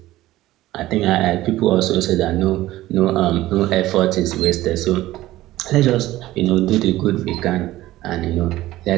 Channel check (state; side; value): quieter; left; 16.1 dB